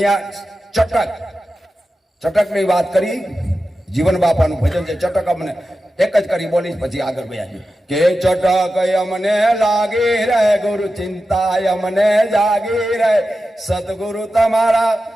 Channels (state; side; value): normal; both; correlation 0.92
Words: ચટકની વાત કરી. જીવન બાપાનું ભજન છે, ચટક અમને એક જ કરી બોલીશ, પછી આગળ ગયા કે ચટક અમને લાગી રહે, ગુરુ ચિંતા અમને જાગી રહે, સદગુરુ તમારા